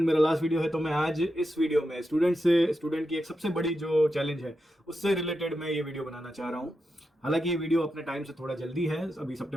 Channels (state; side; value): normal; both; correlation 0.88